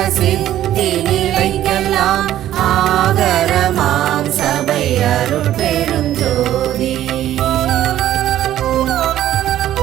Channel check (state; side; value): quieter; left; 12.7 dB